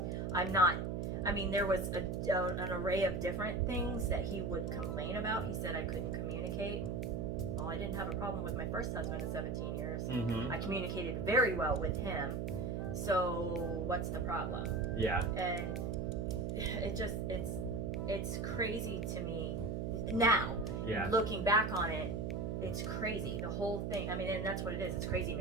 There was an array of different things that he would complain about. He said I couldn't communicate. well, I didn't have a problem with my first husband of 17 years. Mm-hmm. I communicated very well with him. So what's the problem? Yeah. And it's crazy to me now. Yeah. Looking back on it, it's crazy. The whole thing. I mean, and that's what it is. It's crazy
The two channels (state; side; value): noise; right; hum, 1 dB below the sound